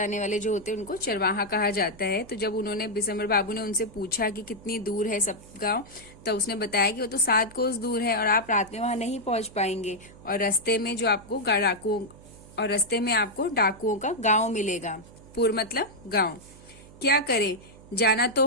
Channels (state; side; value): noise; right; hum, 21 dB below the sound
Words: वाले जो होते हैं उनको चरवाहा कहा जाता है। तो जब उन्होंने विशंबर बाबू ने उनसे पूछा कि कितनी दूर है सप्तगांव, तो उसने बताया कि वो तो 7 कोस दूर है और आप रात में वहां नहीं पहुंच पाएंगे और रास्ते में जो आपको डाकुओं का गांव मिलेगा। पुर मतलब गांव। क्या करे, जाना तो